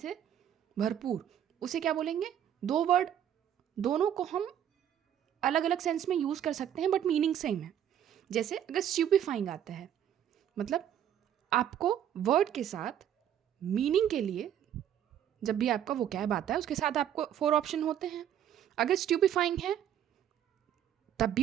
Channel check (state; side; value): quieter; left; 10.2 dB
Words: से भरपूर, उसे क्या बोलेंगे। दो वर्ड, दोनों को हम अलग अलग सेंस में यूज़ कर सकते हैं बट मीनिंग सेम है। जैसे अगर स्ट्यूपिफाइंग आता है, मतलब आपको वर्ड के साथ मीनिंग के लिए, जब भी आपका वोकैब आता है उसके साथ आपको 4 ऑप्शन होते हैं। अगर स्ट्यूपिफाइंग है तब